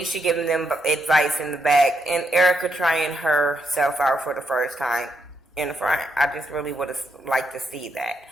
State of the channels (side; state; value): both; normal; correlation 0.79